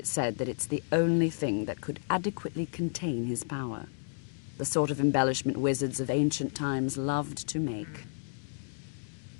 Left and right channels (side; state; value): right; silent; digital silence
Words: said that it's the only thing that could adequately contain his power. The sort of embellishment wizards of ancient times loved to make.